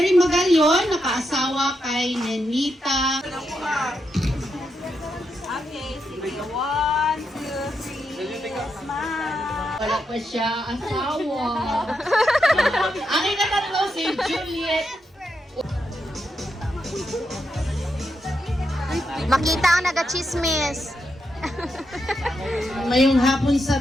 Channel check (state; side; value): normal; both; correlation 0.83